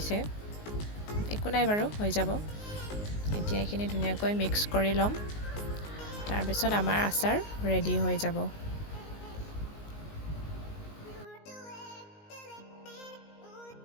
একো নাই বাৰু, হৈ যাব। এতিয়া এইখিনি ধুনীয়াকৈ মিক্স কৰি ল'ম, তাৰপিছত আমাৰ আচাৰ ৰেডি হৈ যাব।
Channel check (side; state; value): right; late; 19 ms